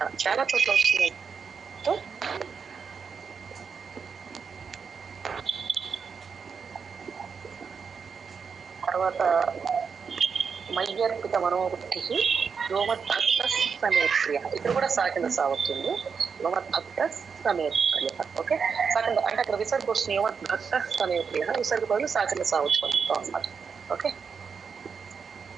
చాలా చోట్ల వస్తున్నాయి. తర్వాత మయ్యర్పిత మనోబుద్ధి యోమద్భక్త సమేప్రియ. ఇక్కడ కూడా సాకింద సాగుతుంది. యోమద్భక్త సమేప్రియ. ఓకే. సాకింద అంటే అక్కడ విసర్గ వస్తుంది, యోమద్భక్త సమేప్రియ. విసర్గ బదులు సాకింద సాగుతాం అన్నమాట. ఓకే.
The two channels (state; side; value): quieter; left; 6.0 dB